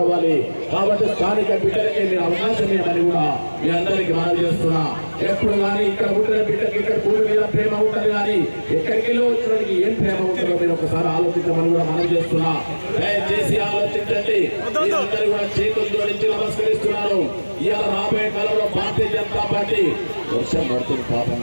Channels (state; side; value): inverted; both; correlation -1.00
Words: అవ్వాలి. కాబట్టి స్థానిక బిడ్డలకి మీరు అవకాశం ఇవ్వమని కూడా మీ అందరికీ మనం చేస్తున్నా. ఎప్పుడు కానీ ఇక్కడ పుట్టిన బిడ్డకి ఇక్కడ పూరి మీద ప్రేమ ఉంటుంది, కానీ ఎక్కడికి వెళ్ళి వచ్చినకి ఏం ప్రేమ ఉంటుందో మీరు ఒకసారి ఆలోచించమని కూడా మనం చేస్తున్నా. దయచేసి ఆలోచించండి. మీరందరూ కూడా చేతులు జోడించి నమస్కరిస్తున్నారు. ఇవాళ రాబోయే కాలంలో భారతీయ జనతా పార్టీ వర్షం పడుతుంది పాపం.